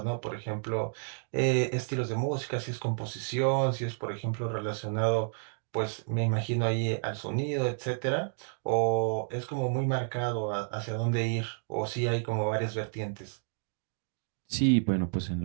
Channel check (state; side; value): silent; left; digital silence